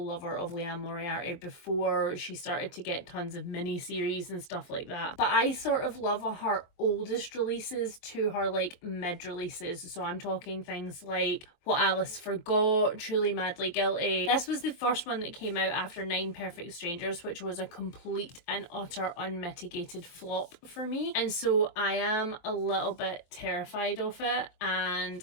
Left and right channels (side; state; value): right; late; 23 ms